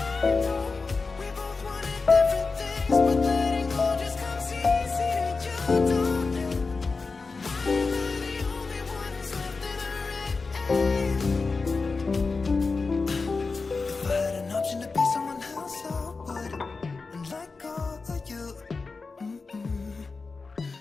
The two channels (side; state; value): right; quieter; 4.2 dB